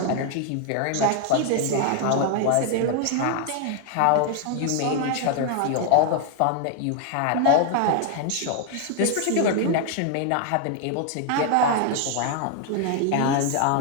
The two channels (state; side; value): different; both; correlation 0.00